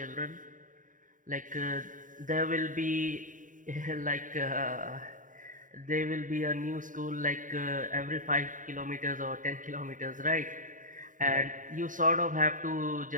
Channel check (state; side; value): late; left; 0.38 ms